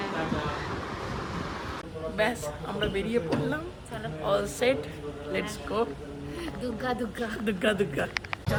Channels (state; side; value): identical; both; correlation 1.00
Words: ব্যাস আমরা বেরিয়ে পড়লাম, all set, let's go. Durga Durga Durga Durga.